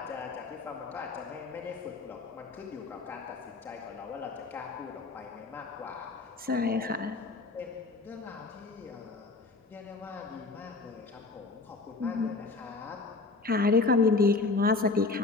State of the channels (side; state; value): right; quieter; 3.8 dB